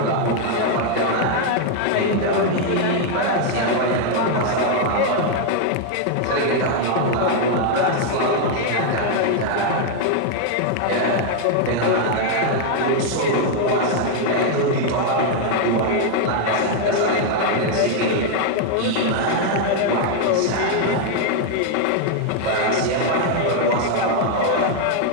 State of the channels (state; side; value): different; both; correlation 0.00